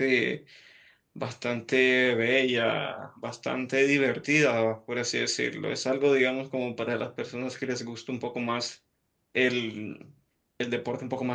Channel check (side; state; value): both; identical; correlation 1.00